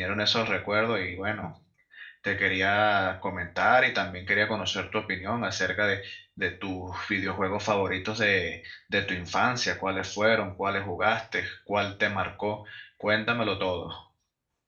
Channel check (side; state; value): both; identical; correlation 1.00